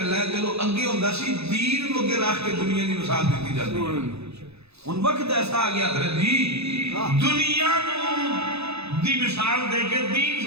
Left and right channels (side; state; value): left; late; 0.79 ms